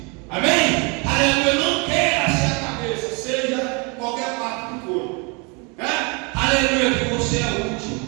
Amém? Aleluia. Não queira ser a cabeça, seja qualquer parte do corpo. Né? Aleluia. Que você é útil.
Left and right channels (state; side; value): quieter; left; 31.8 dB